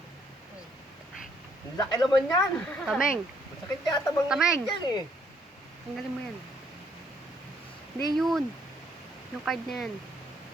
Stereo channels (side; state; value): both; normal; correlation 0.69